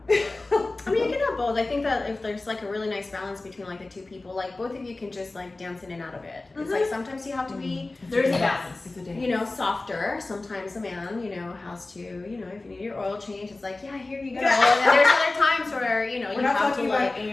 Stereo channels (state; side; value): quieter; right; 3.1 dB